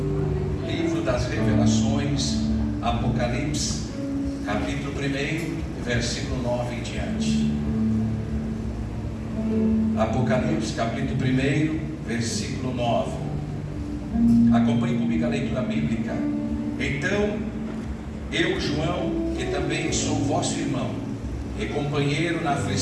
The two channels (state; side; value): identical; both; correlation 1.00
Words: Livro das Revelações, Apocalipse, capítulo 1, versículo 9 em diante. Apocalipse, capítulo 1, versículo 9. Acompanhe comigo a leitura bíblica. Então, eu, João, que também sou vosso irmão e companheiro na